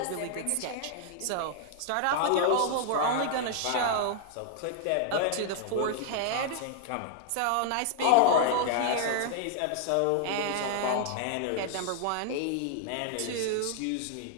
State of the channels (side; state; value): both; different; correlation -0.01